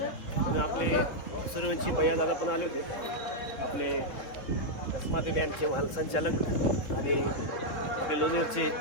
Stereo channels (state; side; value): late; right; 3.7 ms